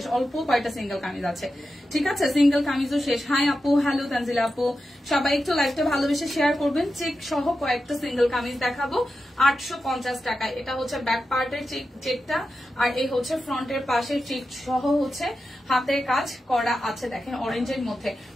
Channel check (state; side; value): normal; both; correlation 0.90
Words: অল্প কয়টা সিঙ্গেল কামিজ আছে, ঠিক আছে? সিঙ্গেল কামিজও শেষ। হাই আপু, হ্যালো তানজিলা আপু, সবাই একটু লাইভটা ভালোবেসে শেয়ার করবেন। চেক সহ কয়েকটা সিঙ্গেল কামিজ দেখাবো 850 টাকায়। এটা হচ্ছে ব্যাক পার্টের চেকটা, আর এই হচ্ছে ফ্রন্টের পাশের চেক সহ হচ্ছে হাতের কাজ করা আছে। দেখেন অরেঞ্জের মধ্যে।